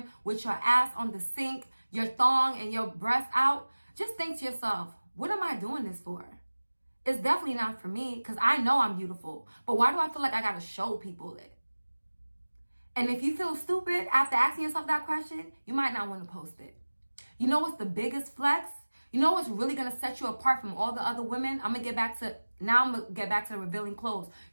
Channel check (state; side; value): inverted; both; correlation -1.00